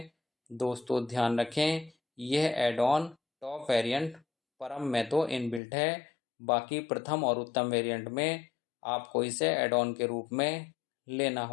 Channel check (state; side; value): drops out; right; at 5.6 s